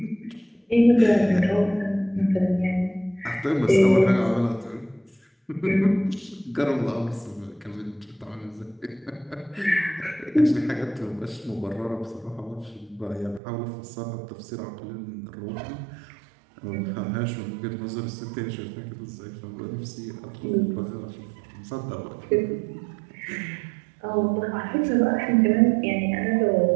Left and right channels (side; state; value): left; drops out; at 13.4 s